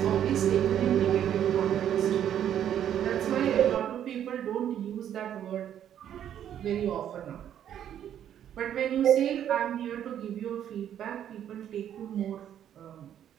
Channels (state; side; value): quieter; left; 10.1 dB